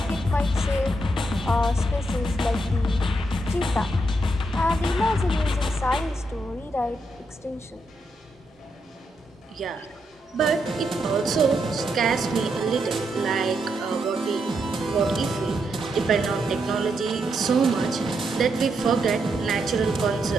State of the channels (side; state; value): both; normal; correlation 0.81